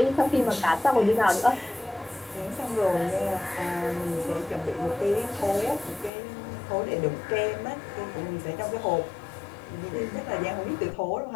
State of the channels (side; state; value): right; drops out; at 6.1 s